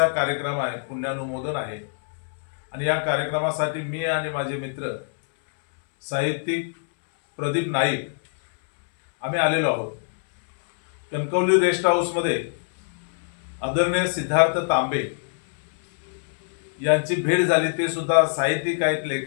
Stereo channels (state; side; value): silent; right; 62 dB below the other